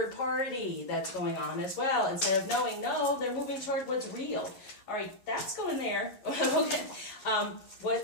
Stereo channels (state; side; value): late; right; 11 ms